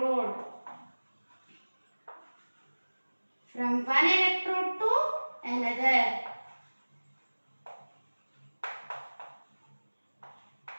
From one electrode to another.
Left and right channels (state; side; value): inverted; both; correlation -1.00